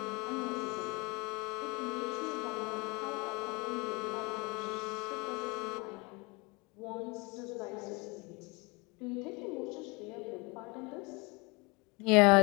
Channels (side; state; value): right; quieter; 27.4 dB